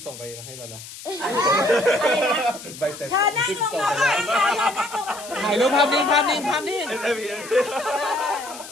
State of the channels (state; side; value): noise; left; hiss, 14 dB below the sound